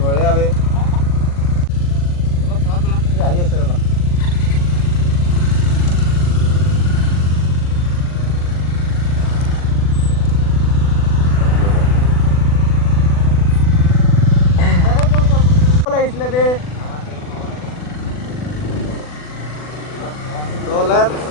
বঢ়িয়া বে আহি আছে ৰ'বা লাগিছিলে বে So let's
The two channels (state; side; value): late; right; 40 ms